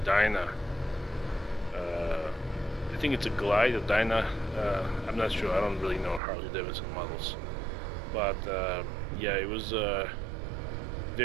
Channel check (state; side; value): drops out; left; at 6.2 s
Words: Dyna. I think it's a Glide, a Dyna. I'm not sure. I don't really know Harley Davidson models, but yeah, it was